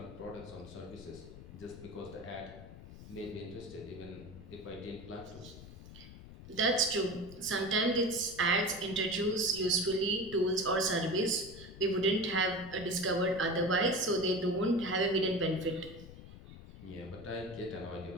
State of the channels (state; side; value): noise; left; rumble, 16 dB below the sound